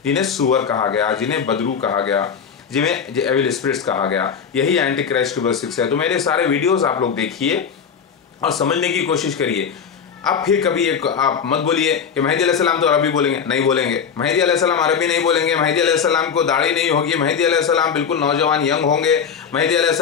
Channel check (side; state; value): right; quieter; 6.9 dB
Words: जिन्हें सुअर कहा गया, जिन्हें बदरू कहा गया, जिन्हें एविल स्पिरिट्स कहा गया। यही एंटी क्राइस्ट की बस है। तो मेरे सारे वीडियोस आप लोग देखिए और समझने की कोशिश करिए। अब फिर कभी एक आप मत बोलिए कि मेहदी अलैहिस्सलाम तो अरबी बोलेंगे, नहीं बोलेंगे। मेहदी अलैहिस्सलाम अरबी नहीं बोलेंगे, मेहदी अलैहिस्सलाम को दाढ़ी नहीं होगी, मेहदी अलैहिस्सलाम बिल्कुल नौजवान यंग होंगे, मेहदी